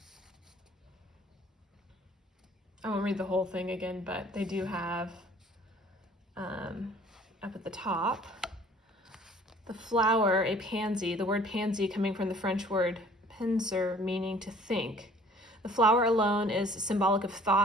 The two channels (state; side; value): normal; both; correlation 0.53